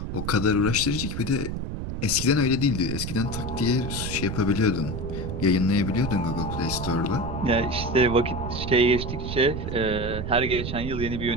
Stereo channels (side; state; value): right; noise; rumble, 5 dB below the sound